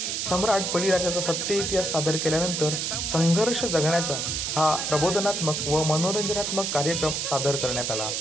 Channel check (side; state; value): right; noise; hiss, 1 dB below the sound